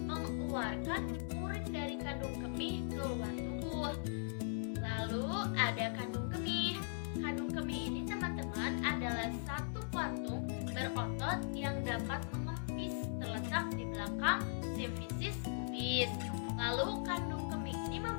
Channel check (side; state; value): right; silent; digital silence